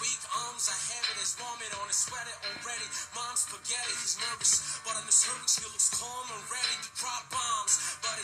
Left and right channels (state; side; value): identical; both; correlation 1.00